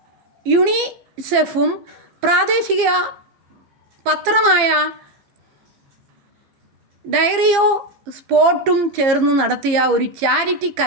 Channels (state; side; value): late; left; 15 ms